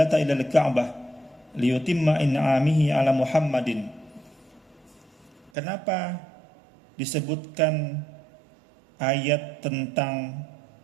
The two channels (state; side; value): drops out; left; at 5.5 s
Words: ila al-Ka'bah liyutimma in'amihi ala Muhammadin. Kenapa disebutkan ayat tentang